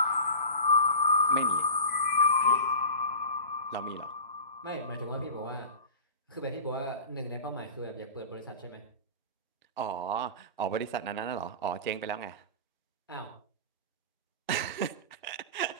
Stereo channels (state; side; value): inverted; both; correlation -0.35